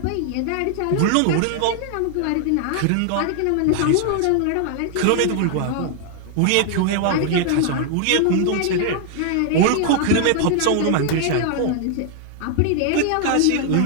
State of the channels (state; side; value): different; both; correlation 0.00